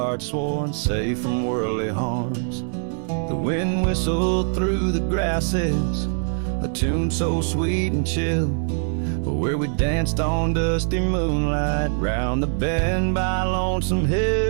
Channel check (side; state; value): left; silent; 64 dB below the other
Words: sworn safe from worldly harms. The wind whistled through the grasses, a tune so sweet and chill, where we danced on dusty moonlight round the bend by Lonesome